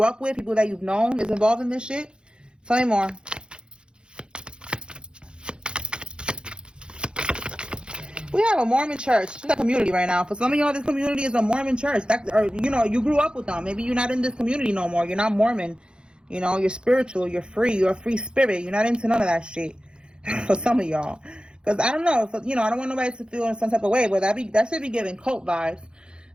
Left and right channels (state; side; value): late; left; 0.051 ms